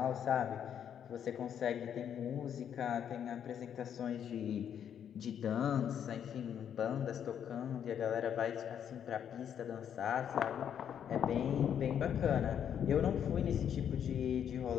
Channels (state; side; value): quieter; right; 8.9 dB